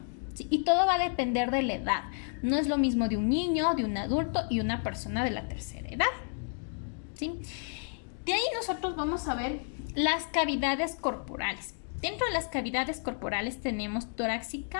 ¿sí? Y todo va a depender de la edad. No es lo mismo de un niño, de un adulto y una persona de la tercera edad, ¿sí? De ahí nosotros vamos a ver las cavidades corporales. Dentro de las cavidades corporales tenemos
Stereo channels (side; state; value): right; silent; 57 dB below the other